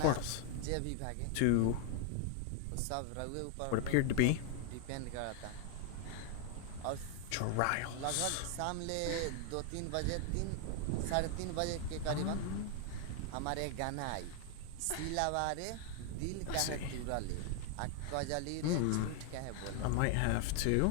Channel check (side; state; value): both; different; correlation 0.00